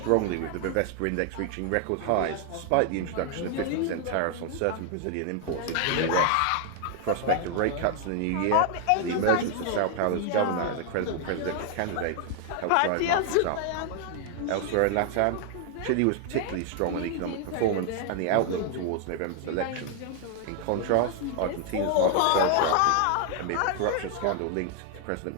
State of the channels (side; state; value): both; different; correlation 0.00